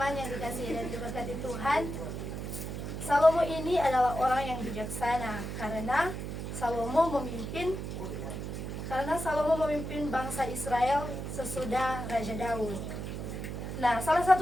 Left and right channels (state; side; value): noise; right; hum, 6 dB below the sound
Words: yang dikasihi dan diberkati Tuhan, Salomo ini adalah orang yang bijaksana karena Salomo memimpin bangsa Israel sesudah Raja Daud. Nah, salah